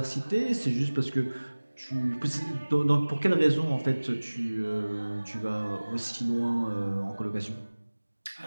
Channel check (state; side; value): inverted; both; correlation -1.00